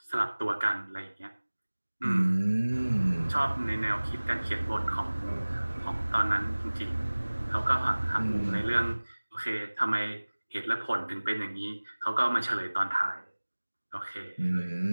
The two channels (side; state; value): both; inverted; correlation -1.00